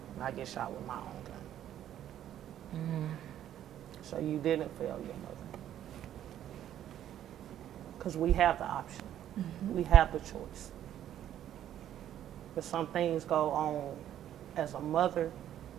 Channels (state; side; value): quieter; left; 11.2 dB